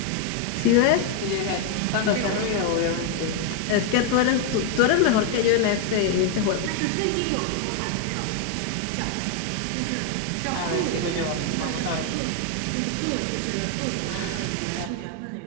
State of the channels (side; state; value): both; different; correlation 0.01